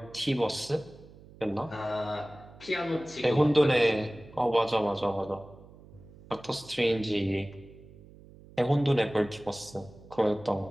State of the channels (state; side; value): noise; right; hum, 21 dB below the sound